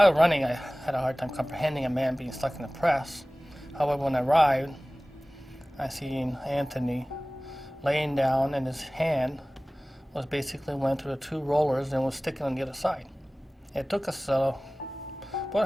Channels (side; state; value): both; normal; correlation 0.98